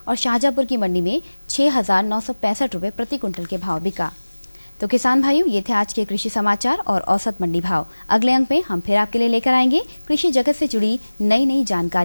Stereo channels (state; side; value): inverted; both; correlation -1.00